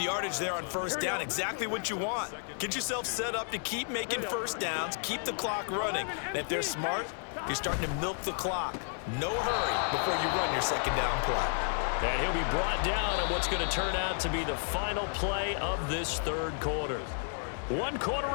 yardage there on 1st down. Exactly what you want. Get yourself set up to keep making 1st downs, keep the clock running. And if they're smart, you're starting to milk the clock. No hurry before you run your 2nd down play. And he'll be brought down on what's going to turn out to be the final play of this 3rd quarter. 1 quarter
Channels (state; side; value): silent; right; 57 dB below the other